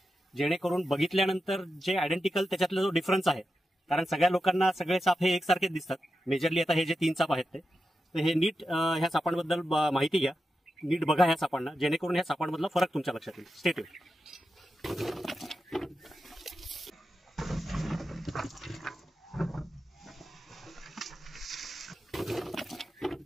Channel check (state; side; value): normal; both; correlation 0.89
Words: जेणेकरून बघितल्यानंतर जे आयडेंटिकल त्याच्यातला जो डिफरन्स आहे, कारण सगळ्या लोकांना सगळे साप हे एकसारखेच दिसतात मेजरली. आता हे जे तीन साप आहेत ते हे नीट ह्या सापांबद्दल माहिती घ्या, नीट बघा ह्या सापांना, जेणेकरून ह्या सापांमधला फरक तुमच्या लक्षात येईल. Stay tune.